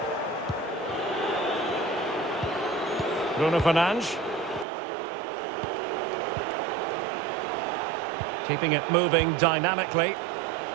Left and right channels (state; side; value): drops out; left; at 4.7 s